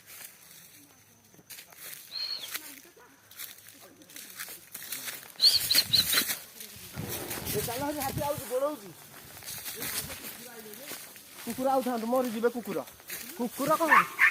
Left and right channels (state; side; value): identical; both; correlation 1.00